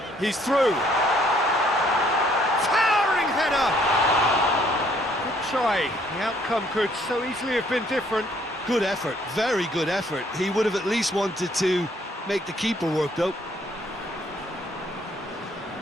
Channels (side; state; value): both; normal; correlation 0.64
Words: He's through. Towering header! Good try. The outcome could so easily have been different. Good effort, very good effort. He would have at least wanted to make the keeper work, though.